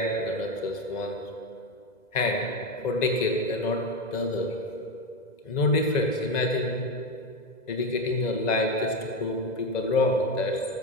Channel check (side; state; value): right; late; 2.0 ms